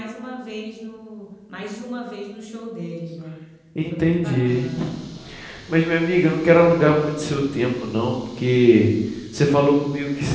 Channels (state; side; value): identical; both; correlation 1.00